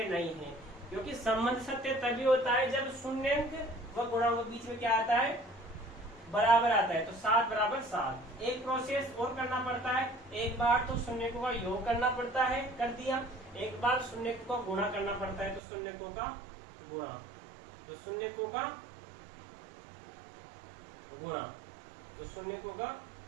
नहीं है। क्योंकि संबंध सत्य तभी होता है जब शून्यंक व गुणांक के बीच में क्या आता है, बराबर आता है। तो 7 बराबर 7। एक प्रोसेस और करना पड़ता है, एक बार तो शून्यकों का योग करना पड़ता है, कर दिया, एक बार शून्यकों का गुणा करना पड़ता है, तो शून्यकों का गुणा, तो शून्यकों का गुणा, तो शून्यकों का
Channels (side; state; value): left; drops out; at 15.6 s